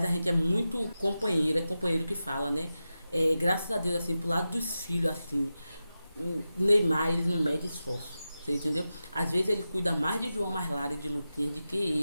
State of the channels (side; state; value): both; inverted; correlation -0.93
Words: a gente é muito companheiro, é companheiro que fala, né? Graças a Deus, assim, pro lado dos filhos, assim, Neymar, ele não mede esforço. Você entendeu? Às vezes ele cuida mais de João Marlara e de Luquinhas do